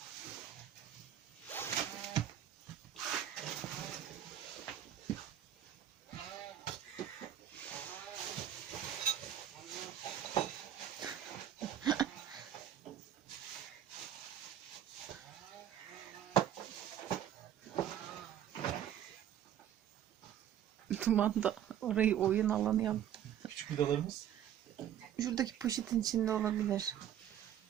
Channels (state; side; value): quieter; left; 10.5 dB